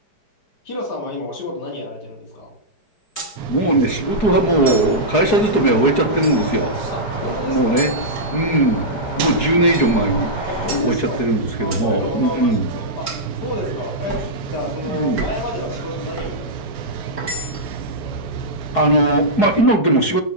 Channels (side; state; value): right; late; 4.7 ms